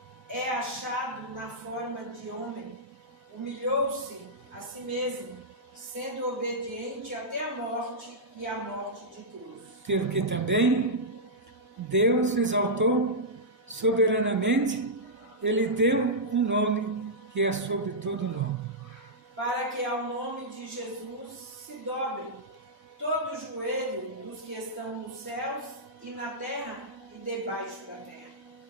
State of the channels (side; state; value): both; normal; correlation -0.11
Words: É achado na forma de homem, humilhou-se a si mesmo, sendo obediente até a morte e a morte de cruz. Pelo que também Deus exaltou soberanamente, Ele deu um nome que é sobre todo nome, para que ao nome de Jesus se dobre todo o joelho dos que estão nos céus e na terra e debaixo da terra.